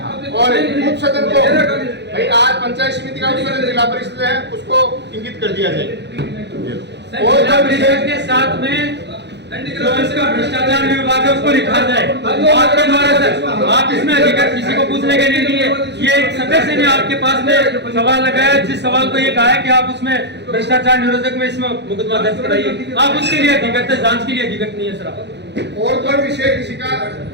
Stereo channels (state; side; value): late; left; 0.50 ms